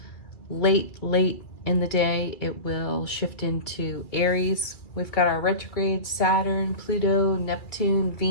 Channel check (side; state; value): right; late; 2.4 ms